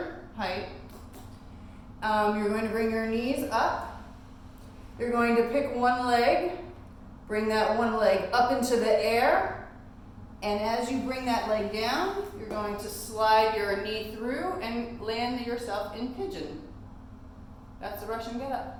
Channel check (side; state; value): both; identical; correlation 1.00